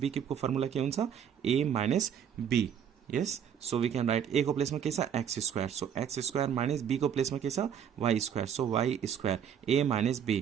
cube को फर्मुला के हुन्छ, a minus b। Yes, so we can write a को प्लेसमा के छ x square, so x square minus b को प्लेसमा के छ y square, so y square a minus b।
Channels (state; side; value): quieter; left; 8.5 dB